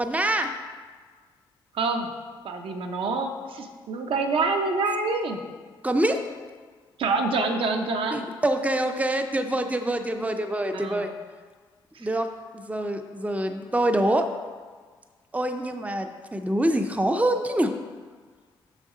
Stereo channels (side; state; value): both; normal; correlation 0.68